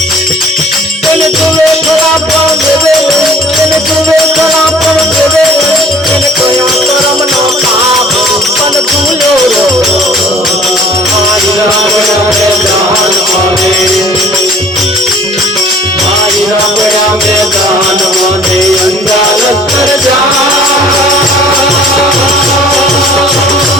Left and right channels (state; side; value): normal; both; correlation 0.52